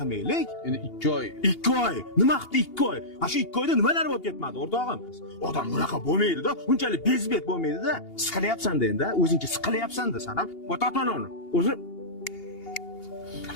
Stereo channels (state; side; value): late; right; 2.8 ms